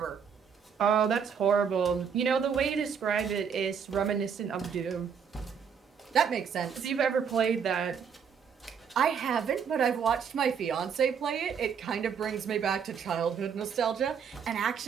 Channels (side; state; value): left; quieter; 7.0 dB